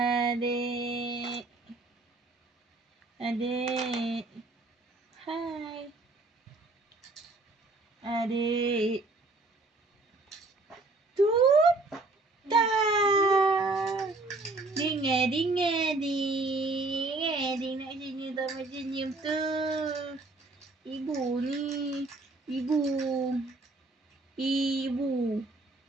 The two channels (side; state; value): left; quieter; 3.2 dB